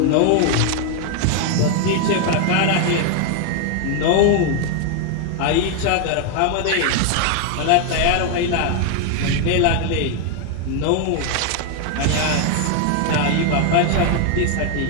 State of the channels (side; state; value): both; different; correlation 0.01